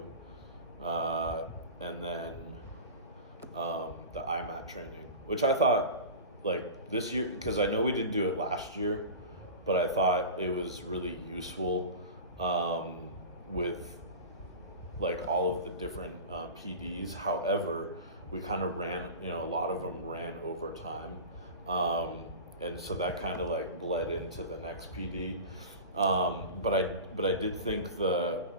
and then the IMAT training, which I thought like this year, because I know we didn't do it last year, but I thought it was really useful with like all of the different PDs. However, we kind of ran, a lot of them ran over time. And so that kind of like bled into the next PD. But I did think the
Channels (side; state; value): both; inverted; correlation -0.32